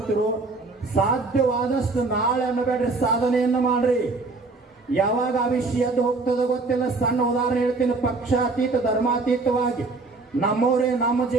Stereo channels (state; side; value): quieter; left; 3.6 dB